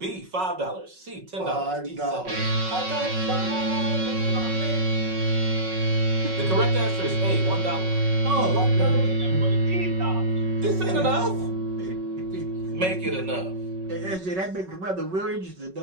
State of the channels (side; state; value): left; late; 5.4 ms